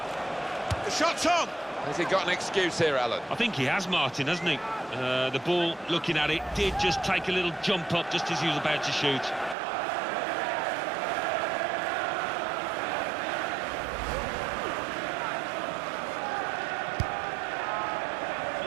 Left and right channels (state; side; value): drops out; left; at 9.6 s